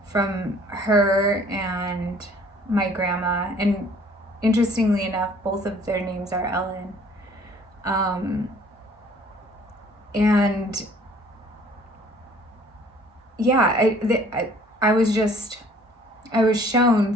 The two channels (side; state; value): both; normal; correlation 0.55